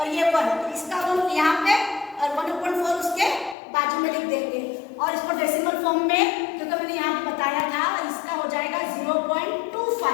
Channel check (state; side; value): drops out; right; at 3.6 s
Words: ये 1, तो इसका 1 यहाँ पे और 1/4 उसके बाजू में लिख देंगे। और इसको डेसिमल फॉर्म में जो तो मैंने यहाँ पे बताया था, इसका हो जाएगा